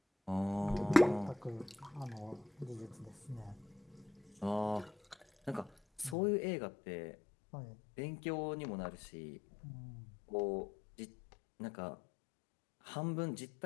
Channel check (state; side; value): drops out; right; at 6.2 s